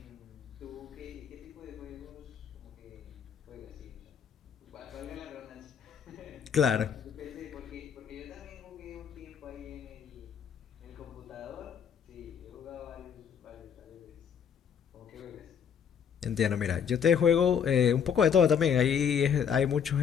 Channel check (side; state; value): right; quieter; 7.6 dB